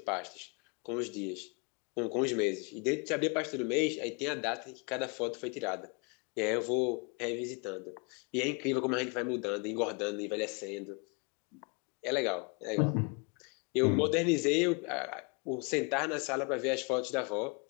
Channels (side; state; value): right; quieter; 33.2 dB